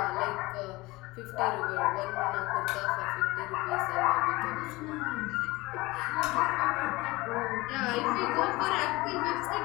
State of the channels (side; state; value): right; quieter; 21.3 dB